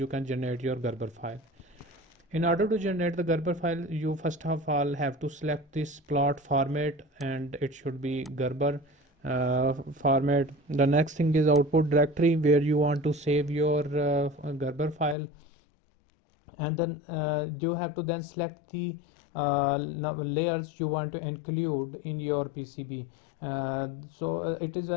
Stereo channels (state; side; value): drops out; right; at 15.2 s